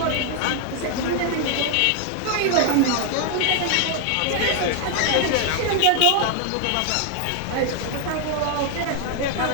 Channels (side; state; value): both; different; correlation 0.00